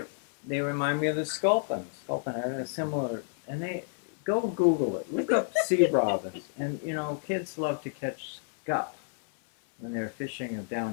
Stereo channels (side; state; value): right; silent; 58 dB below the other